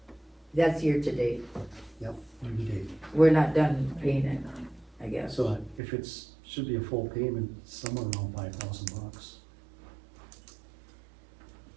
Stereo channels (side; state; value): left; drops out; at 5.8 s